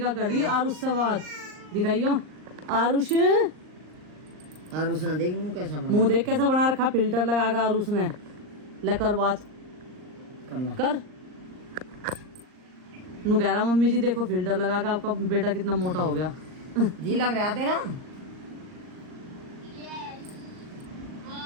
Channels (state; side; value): late; left; 39 ms